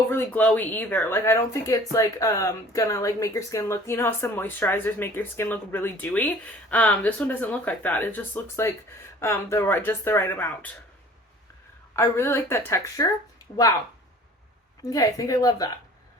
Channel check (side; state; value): both; normal; correlation 0.48